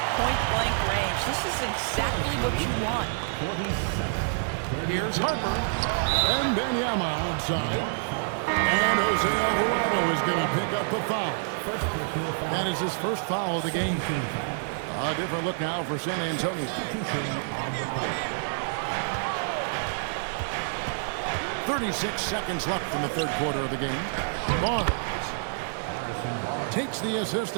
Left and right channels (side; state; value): left; silent; 60 dB below the other